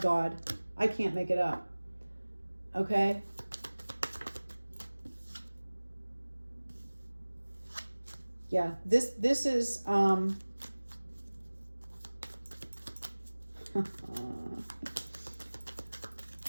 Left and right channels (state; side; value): inverted; both; correlation -1.00